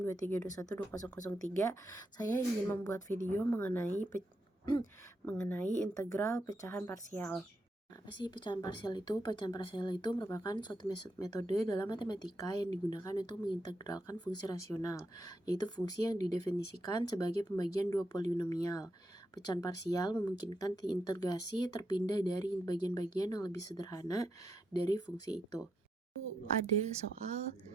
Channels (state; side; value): normal; both; correlation 0.83